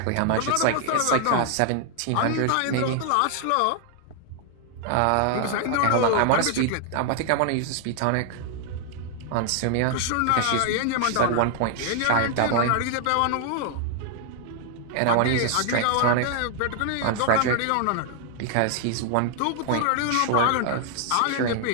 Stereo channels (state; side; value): different; both; correlation 0.00